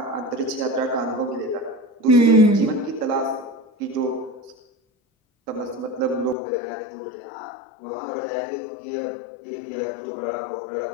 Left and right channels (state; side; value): drops out; right; at 6.4 s